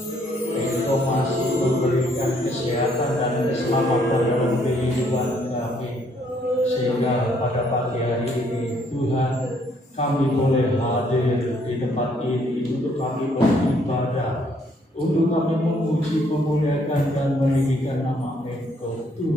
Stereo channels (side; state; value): both; normal; correlation 0.67